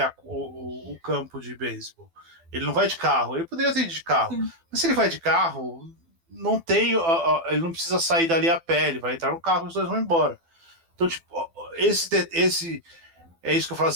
o campo de beisebol. Ele não vai de carro, ele poderia ter ido de carro, mas se ele vai de carro, não tem, ele não precisa sair dali a pé, ele vai entrar no carro e os dois vão embora. Então, tipo, é isso que eu falo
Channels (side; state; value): left; late; 12 ms